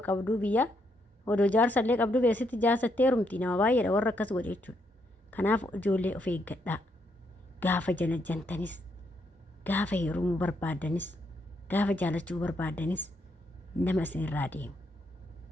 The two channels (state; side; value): normal; both; correlation 0.76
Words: qabduu biyya odoo jaarsallee qabduu beesitti jaarsattee heerumti nama baay'eedha warra akkas godhe jechuudha. Kanaaf ijoollee of eeggadhaa. Gaafa jantanis, gaafa heerumuu barbaadanis, gaafa jaalachuu barbaadanis nama isinirraa deemu.